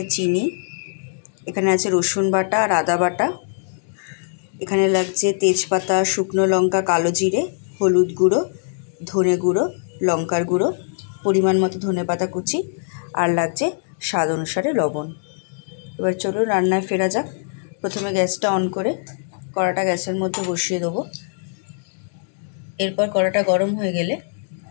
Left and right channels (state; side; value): silent; right; digital silence